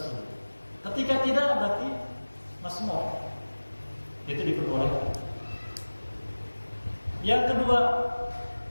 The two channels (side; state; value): both; inverted; correlation -1.00